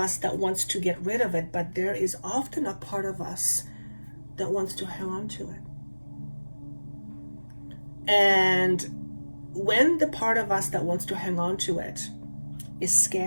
that wants to get rid of it, but there is often a part of us that wants to hang on to it. And when the part of us that wants to hang on to it is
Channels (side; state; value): both; inverted; correlation -1.00